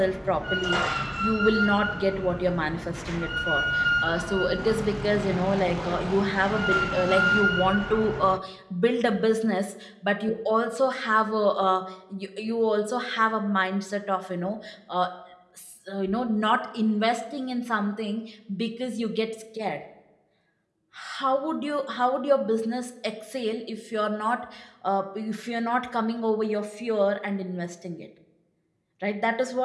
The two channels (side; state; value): both; identical; correlation 1.00